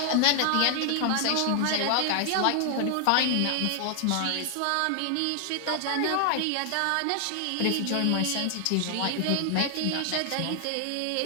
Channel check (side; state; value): both; different; correlation 0.00